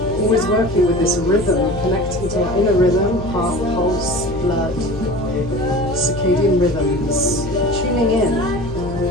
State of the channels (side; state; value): left; noise; hum, 11 dB below the sound